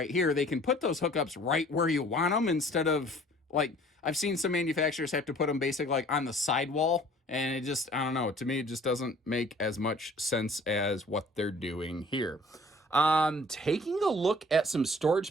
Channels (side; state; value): both; normal; correlation 0.52